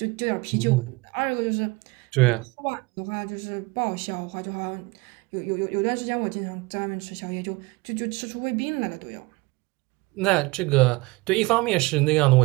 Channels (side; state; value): left; quieter; 24.0 dB